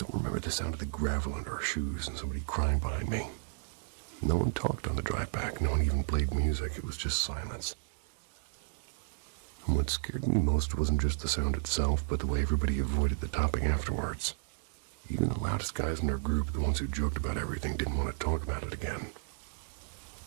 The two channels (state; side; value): silent; left; digital silence